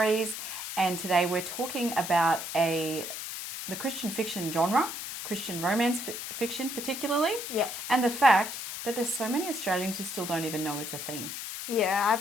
and today we're talking about the Christian fiction genre, Christian romance fiction particularly, Yeah. and the fact that there's so many Australians who still don't even know it's a thing. Yeah,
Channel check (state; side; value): noise; left; hiss, 7 dB below the sound